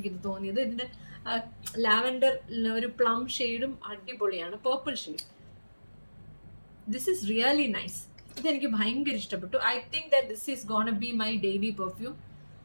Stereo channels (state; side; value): inverted; both; correlation -1.00